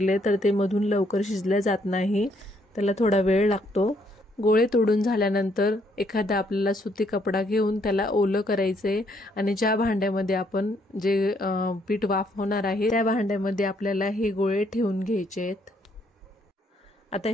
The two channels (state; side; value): normal; both; correlation 0.70